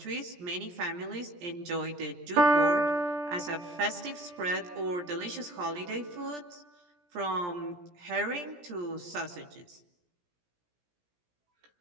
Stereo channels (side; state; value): left; late; 17 ms